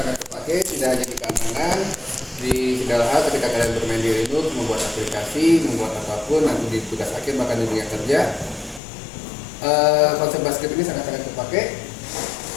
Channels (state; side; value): drops out; right; at 8.8 s